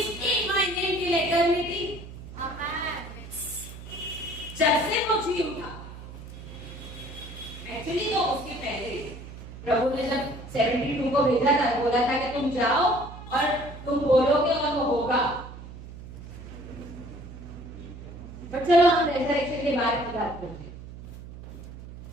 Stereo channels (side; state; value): right; noise; hum, 14 dB below the sound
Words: in my name till eternity. जब से वो जी उठा, एक्चुअली तो उसके पहले प्रभु ने जब 72 को भेजा था, बोला था कि तुम जाओ और तुम बोलोगे और वो होगा। बट चलो हम रेजरेक्शन के बारे में बात करते हैं।